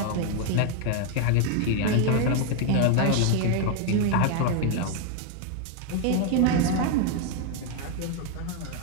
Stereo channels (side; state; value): both; different; correlation 0.01